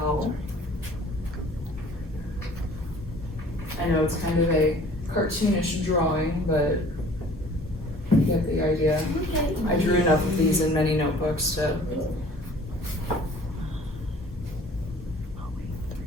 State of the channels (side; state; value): both; normal; correlation 0.50